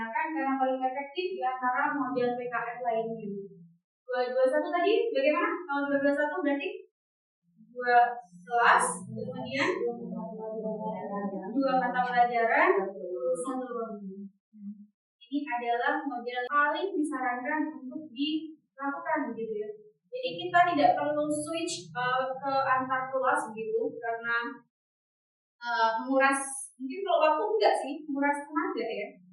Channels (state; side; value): identical; both; correlation 1.00